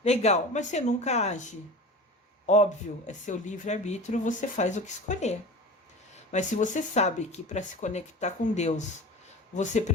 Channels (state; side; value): normal; both; correlation 0.34